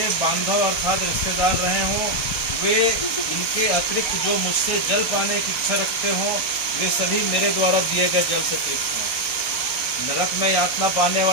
बांधव अर्थात रिश्तेदार रहे हों, वे इनके अतिरिक्त जो मुझसे जल पाने की इच्छा रखते हों, वे सभी मेरे द्वारा दिए गए जल से तृप्त हों। नरक में यातना पाने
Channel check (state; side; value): late; right; 1.2 ms